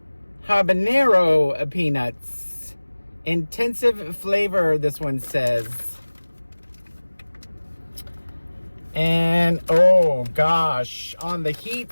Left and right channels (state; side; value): inverted; both; correlation -1.00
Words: habanero peanuts. Intensive flavor, this one says. And oh gosh, on the heat